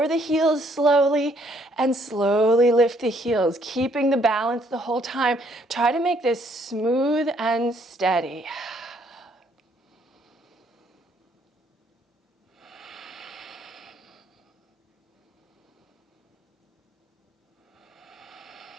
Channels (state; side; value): normal; both; correlation 0.67